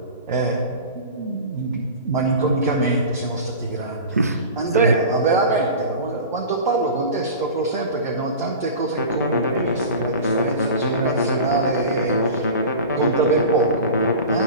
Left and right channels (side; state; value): both; inverted; correlation -0.34